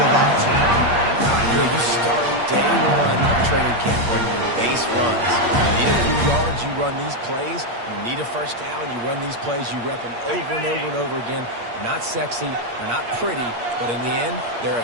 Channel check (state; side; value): late; left; 8.5 ms